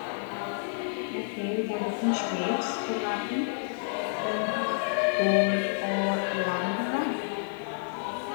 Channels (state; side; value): silent; right; digital silence